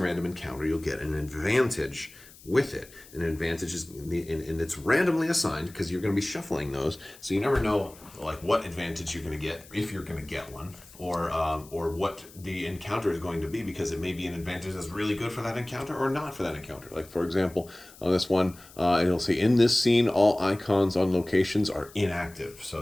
random encounter, you'll get an advantage with it. An advantage is, and it's randomly assigned because you're going to be shuffling those, so you never know like what advantage you're going to get, if you're going to get one, or what the encounter is going to be, because it may be an advantage that's really good for that encounter or not for that encounter. Like for example, on this one, it'll say in this scene all icons on locations are inactive, so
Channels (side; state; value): left; noise; hiss, 22 dB below the sound